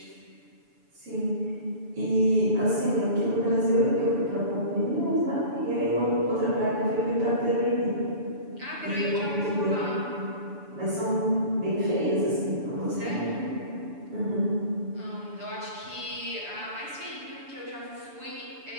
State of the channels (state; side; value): late; left; 6.9 ms